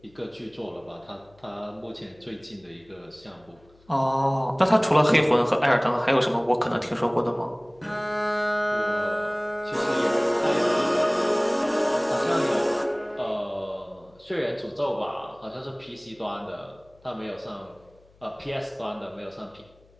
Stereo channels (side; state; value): left; noise; hum, 30 dB below the sound